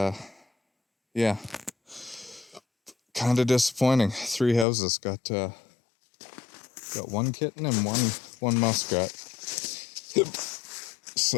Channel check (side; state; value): right; drops out; at 4.7 s